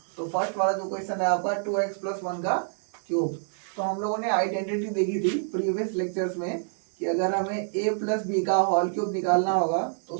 तो फर्स्ट वाला जो क्वेश्चन है आपका 2x + 1 का क्यूब। तो हम लोगों ने आइडेंटिटी देखी थी प्रीवियस लेक्चर्स में कि अगर हमें a + b का होल क्यूब निकालना होगा तो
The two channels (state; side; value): silent; left; digital silence